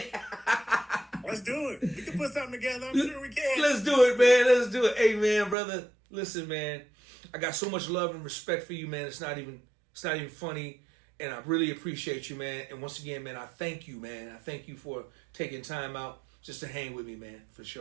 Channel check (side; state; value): left; drops out; at 5.6 s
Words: Let's do it. We can put something together. I'm sure we can. Let's do it, man. Let's do it. Hey, man, brother. Listen, man. I got so much love and respect for you, man. It's not even funny. And I really appreciate you, man. And once again, man, I thank you, man. I thank you for taking time out just to hang with me, man, for